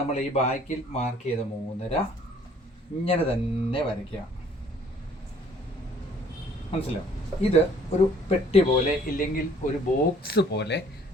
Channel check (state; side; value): normal; both; correlation 0.57